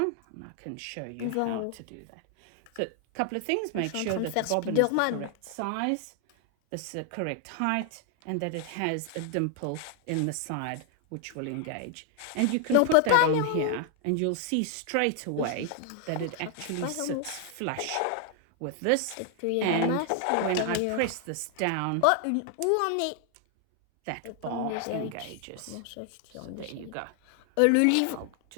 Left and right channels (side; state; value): both; different; correlation 0.00